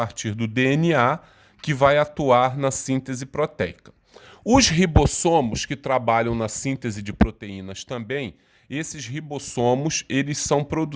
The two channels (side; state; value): both; identical; correlation 1.00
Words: do DNA que vai atuar na síntese proteica. Os ribossomos que trabalham na síntese de proteínas também, esses ribossomos, eles são